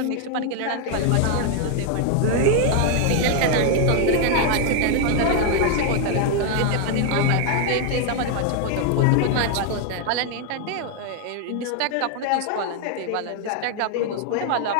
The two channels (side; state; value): both; different; correlation 0.01